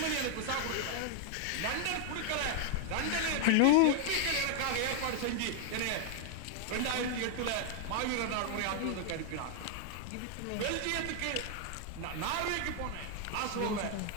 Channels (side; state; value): both; different; correlation 0.00